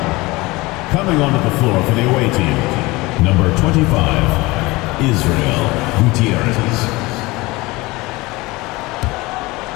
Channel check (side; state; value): right; quieter; 21.9 dB